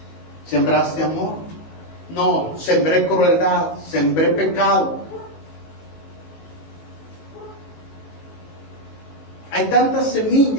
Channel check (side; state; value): right; late; 19 ms